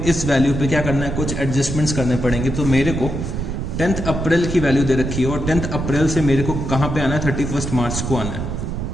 इस वैल्यू पे क्या करना है, कुछ एडजस्टमेंट्स करने पड़ेंगे। तो मेरे को 10th अप्रैल की वैल्यू दे रखी है और 10th अप्रैल से मेरे को कहाँ पे आना है, 31st मार्च को आना है।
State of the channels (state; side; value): noise; right; rumble, 4 dB below the sound